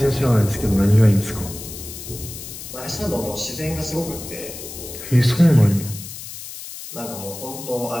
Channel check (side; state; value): left; noise; hiss, 11 dB below the sound